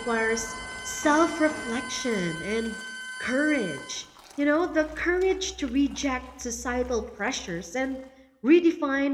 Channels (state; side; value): identical; both; correlation 1.00